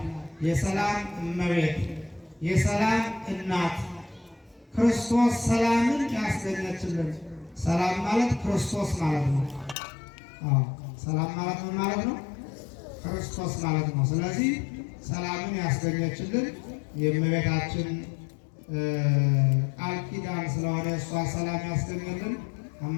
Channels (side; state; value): right; drops out; at 9.8 s